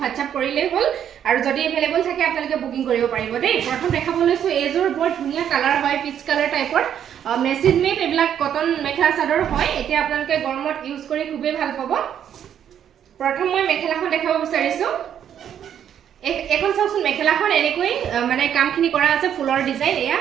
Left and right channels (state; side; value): quieter; left; 9.4 dB